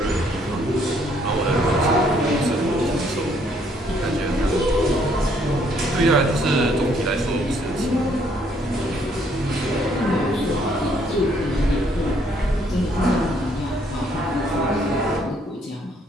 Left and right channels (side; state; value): both; normal; correlation 0.67